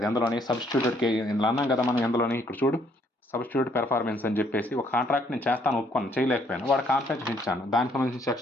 ఎందులోని సబ్స్టిట్యూటెడ్ ఇందులో అన్నాం కదా మనం, ఎందులోని ఇక్కడ చూడు సబ్స్టిట్యూట్ పెర్ఫార్మెన్స్ అని చెప్పేసి ఒక కాంట్రాక్ట్ నేను చేస్తాను ఒప్పుకున్నాను, చేయలేకపోయాను, వాడు కాంపెన్సేషన్ ఇచ్చాను, దానికి సంబంధించిన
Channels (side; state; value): both; normal; correlation 0.67